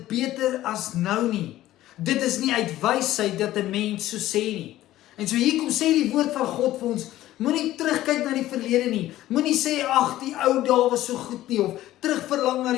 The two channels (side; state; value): right; quieter; 14.7 dB